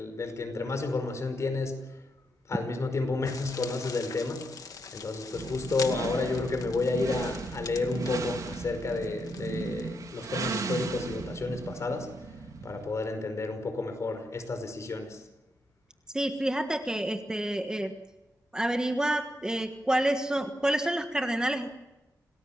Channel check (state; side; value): normal; both; correlation 0.82